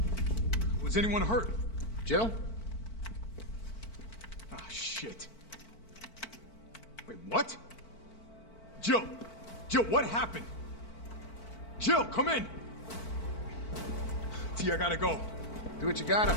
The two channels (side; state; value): right; late; 4.5 ms